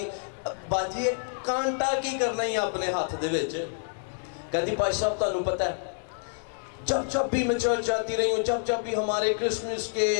باجی کانٹا کی کرنا ہی اپنے ہاتھ دے وچ؟ کہتی پاش صاحب تانوں پتہ ہے جب بھی میں چرچ جاتی رہی ہوں، جب بھی ہمارے کرسمس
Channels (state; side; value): silent; right; 59 dB below the other